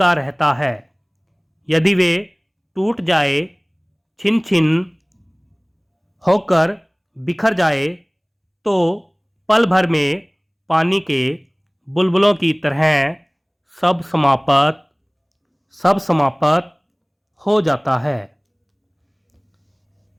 रहता है। यदि वे टूट जाए, छिन छिन होकर बिखर जाए, तो पल भर में पानी के बुलबुलों की तरह सब समाप्त हो जाता है।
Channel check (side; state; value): both; identical; correlation 1.00